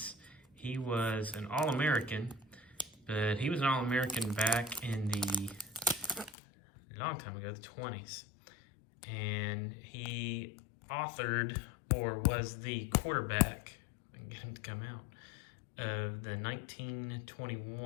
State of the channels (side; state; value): right; drops out; at 6.3 s